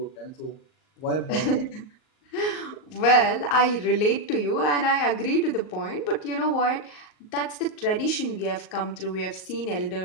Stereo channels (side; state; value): right; late; 38 ms